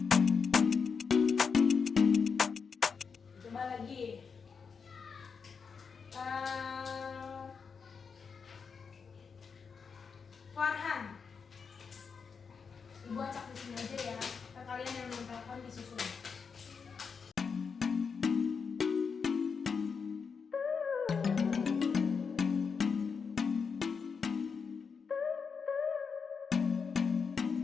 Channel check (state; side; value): quieter; right; 5.7 dB